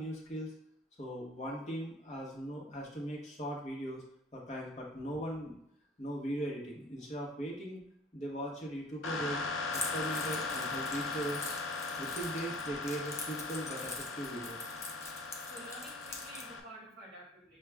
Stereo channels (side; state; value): both; normal; correlation 0.48